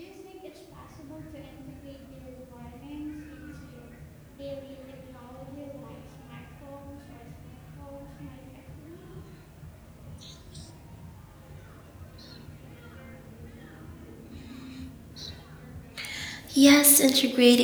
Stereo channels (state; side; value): identical; both; correlation 1.00